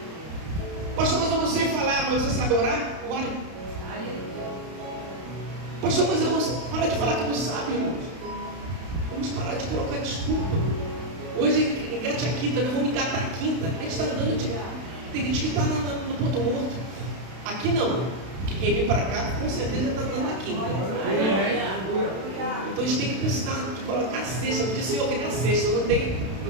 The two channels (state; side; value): late; left; 32 ms